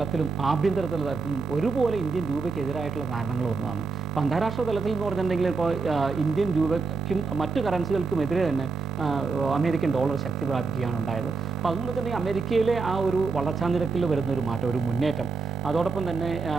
ആഭ്യന്തര തലത്തിലും ഒരുപോലെ ഇന്ത്യൻ രൂപയ്ക്കെതിരായിട്ടുള്ള കാരണങ്ങൾ ഒന്നാണ്. അപ്പോൾ അന്താരാഷ്ട്ര തലത്തിൽ എന്ന് പറഞ്ഞിട്ടുണ്ടെങ്കിൽ ഇപ്പോൾ ഇന്ത്യൻ രൂപയ്ക്കും മറ്റു കറൻസികൾക്കും എതിരെ തന്നെ അമേരിക്കൻ ഡോളർ ശക്തി പ്രാപിക്കുകയാണ് ഉണ്ടായത്. അപ്പോൾ അതുകൊണ്ട് തന്നെ അമേരിക്കയിലെ ആ ഒരു വളർച്ചാ നിരക്കിൽ വരുന്ന ഒരു മാറ്റം, ഒരു മുന്നേറ്റം, അതോടൊപ്പം തന്നെ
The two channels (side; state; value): left; quieter; 4.5 dB